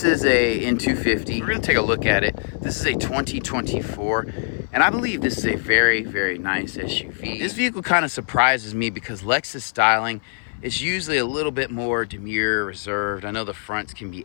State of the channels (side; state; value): right; silent; 58 dB below the other